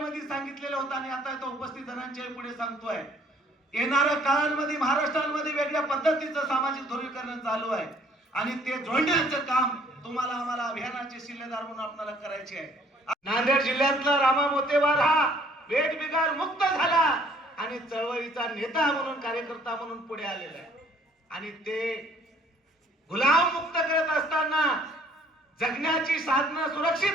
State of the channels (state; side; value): normal; both; correlation 0.59